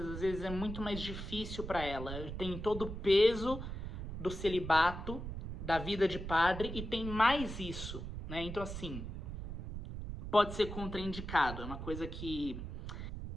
às vezes é muito mais difícil para ela. Tem todo o peso do celibato, da vida de padre, e tem mais isso, né? Então, assim, pode ser contraindicado. É uma coisa que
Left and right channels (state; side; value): noise; right; rumble, 7 dB below the sound